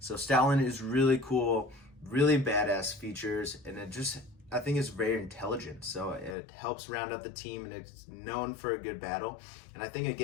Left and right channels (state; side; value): drops out; right; at 6.4 s